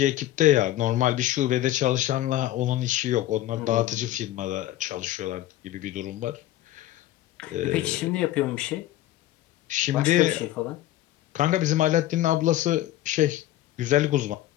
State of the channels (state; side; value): quieter; right; 14.3 dB